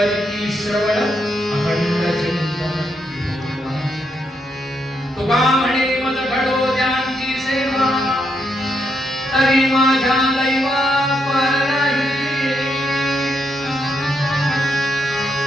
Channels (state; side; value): normal; both; correlation 0.79